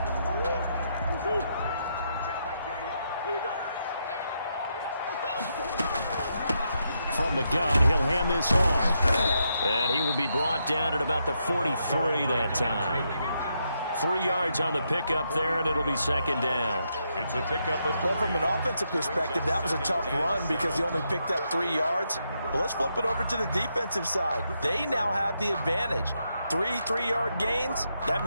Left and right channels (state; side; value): inverted; both; correlation -0.80